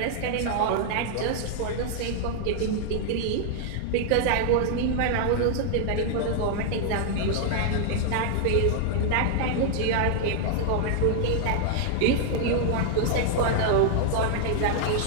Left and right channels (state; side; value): different; both; correlation -0.01